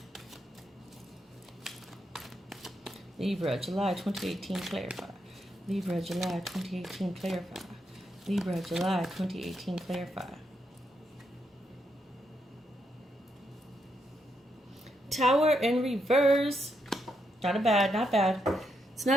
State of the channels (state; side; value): normal; both; correlation 0.80